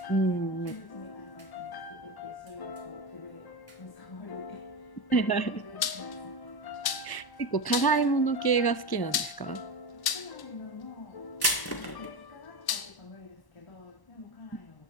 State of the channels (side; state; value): right; late; 1.1 ms